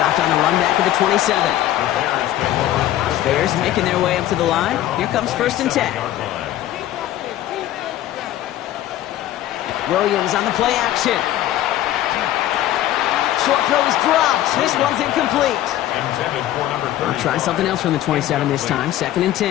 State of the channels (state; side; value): quieter; right; 13.3 dB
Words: on the run back at the 27. Bears making their way up to the line. Here comes first and 10. Williams on the play action. Short throw is dropped. This one's incomplete. We'll try something else from the 27 this time. Second and